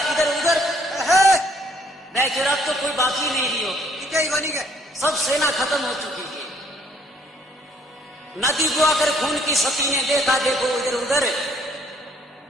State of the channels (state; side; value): normal; both; correlation 0.65